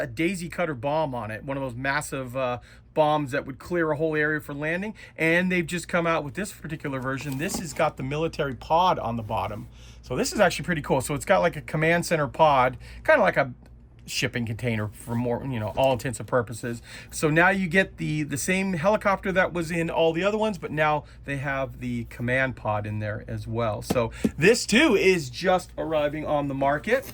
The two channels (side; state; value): both; identical; correlation 1.00